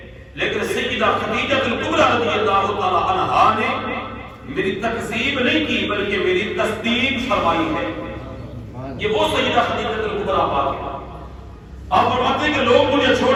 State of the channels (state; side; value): identical; both; correlation 1.00